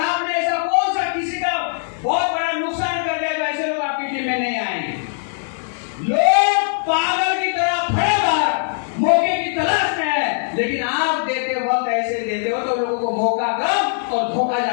ऐसा कौन सा किसी का बहुत बड़ा नुकसान कर दिया जो ऐसे लोग आपकी टीम में नहीं आएंगे? लोग पागल की तरह खड़े बाहर मौके की तलाश में है, लेकिन आप देते वक्त ऐसे देते हो तो लोगों को मौका कम और धोखा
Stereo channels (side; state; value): right; silent; digital silence